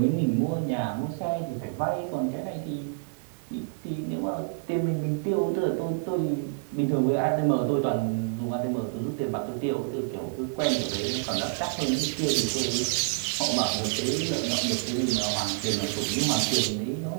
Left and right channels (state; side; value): silent; left; digital silence